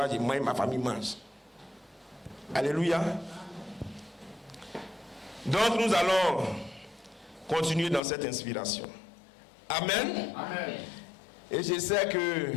moi et ma famille mange. Alléluia. Donc nous allons continuer dans cette inspiration. Amen. Amen. Et je sais que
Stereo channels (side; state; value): right; drops out; at 8.0 s